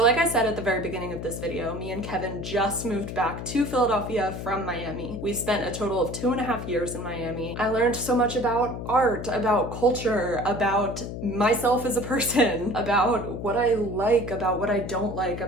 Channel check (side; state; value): left; noise; hum, 7 dB below the sound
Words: like I said at the very beginning of this video, me and Kevin just moved back to Philadelphia from Miami. We spent a total of 2.5 years in Miami. I learned so much about art, about culture, about myself as a person, about what I like, about what I don't like,